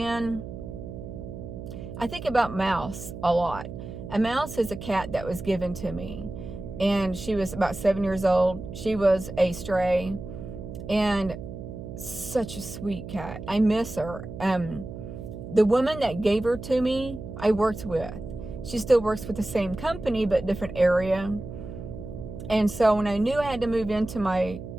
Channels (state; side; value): noise; right; hum, 10 dB below the sound